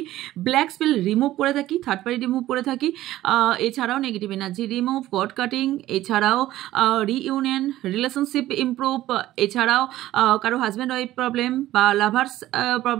ব্ল্যাক স্পেল রিমুভ করে থাকি, থার্ড পার্টি রিমুভ করে থাকি, এছাড়াও negative energy remove, god cutting, এছাড়াও রিইউনিয়ন, রিলেশনশিপ ইমপ্রুভ, এছাড়াও কারো হাজব্যান্ড ওয়াইফ প্রবলেম বা লাভার্স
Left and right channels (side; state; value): left; quieter; 14.9 dB